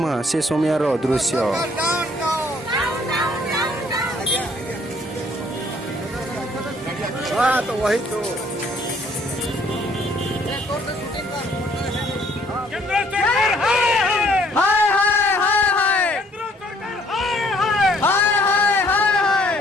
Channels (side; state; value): both; normal; correlation 0.62